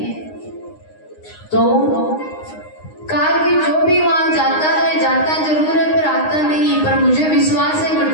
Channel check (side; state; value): right; late; 9.7 ms